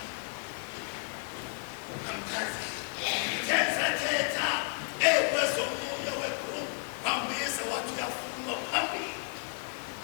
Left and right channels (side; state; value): right; quieter; 38.3 dB